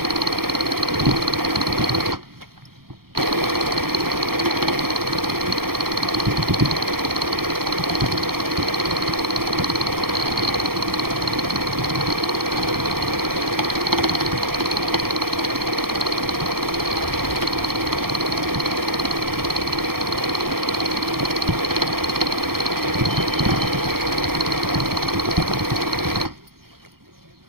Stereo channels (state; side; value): late; left; 0.94 ms